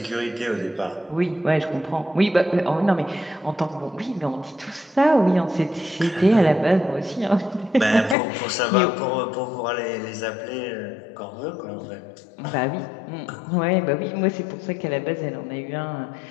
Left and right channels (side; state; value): right; drops out; at 8.2 s